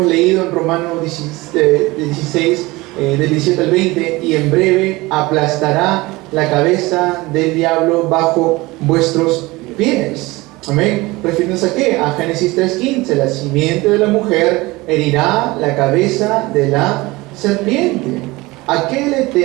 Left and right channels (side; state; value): left; quieter; 21.5 dB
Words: leído en Romanos 16, del 17 al 20: y en breve aplastará la cabeza del diablo bajo vuestros pies. Amén. ¿Refiriéndose a qué? A Génesis 3:15: la simiente de la mujer herirá la cabeza de la serpiente. ¿A qué le